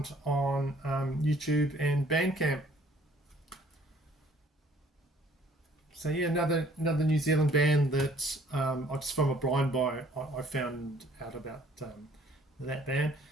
on YouTube and Bandcamp. So yeah, another New Zealand band that just from a blind buy I found out about that band.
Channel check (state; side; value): normal; both; correlation 0.58